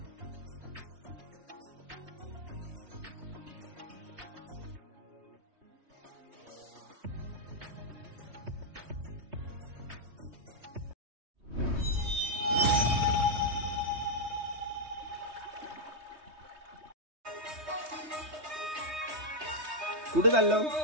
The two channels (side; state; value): left; late; 3.2 ms